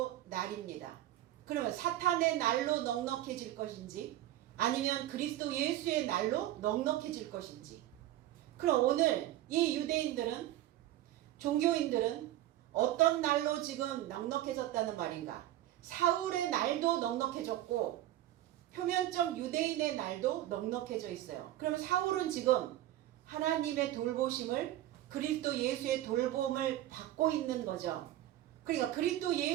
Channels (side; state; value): left; quieter; 14.1 dB